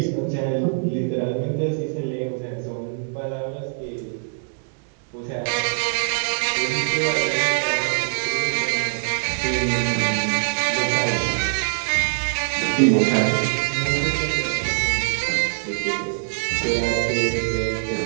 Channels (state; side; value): silent; left; 63 dB below the other